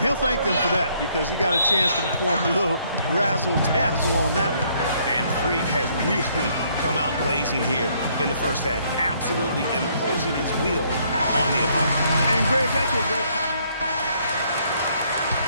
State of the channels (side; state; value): both; inverted; correlation -0.67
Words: He'll thank them for that because he got a chance to perform a little razzle-dazzle on that one. And Freak has really come out blazing here in the first half, absolutely imposing his will on the opponent. And Greg, that's what great.